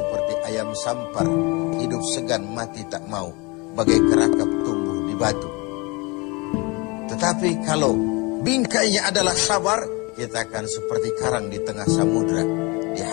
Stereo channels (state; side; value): quieter; right; 27.1 dB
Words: ayam sampar, hidup segan mati tak mau, bagai kerakap tumbuh di batu. Tetapi kalau bingkainya adalah sabar, kita akan seperti karang di tengah samudra,